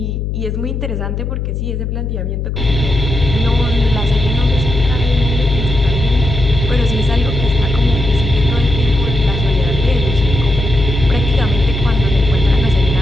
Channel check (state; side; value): noise; left; hum, 3 dB below the sound